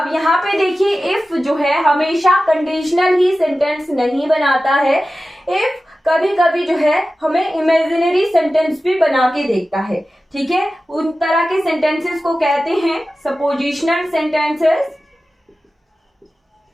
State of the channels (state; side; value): normal; both; correlation 0.95